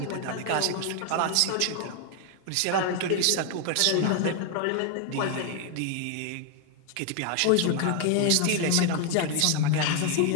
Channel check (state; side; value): different; both; correlation 0.00